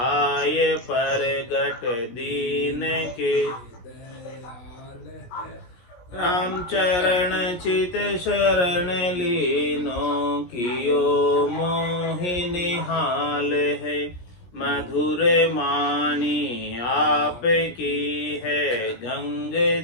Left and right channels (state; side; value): late; right; 17 ms